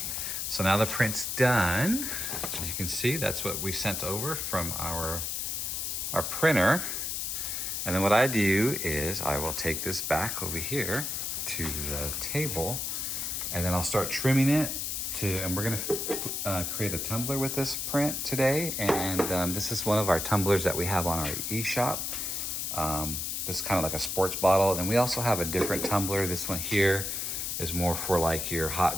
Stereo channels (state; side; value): noise; left; hiss, 2 dB below the sound